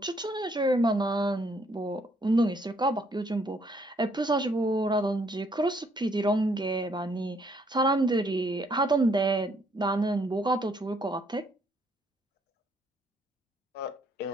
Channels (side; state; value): both; normal; correlation 0.68